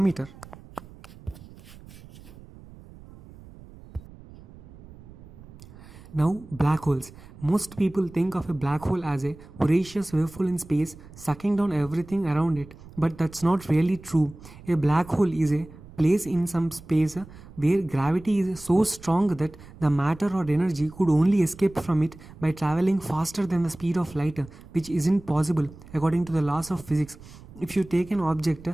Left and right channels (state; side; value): noise; right; rumble, 19 dB below the sound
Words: Now, black holes. Most people think of a black hole as a voracious waveful in space sucking down everything around it, but that's not really true. A black hole is a place in some space where gravity is so strong that the matter or energy could only escape from it by traveling faster than the speed of light, which isn't possible according to the laws of physics. If you take an object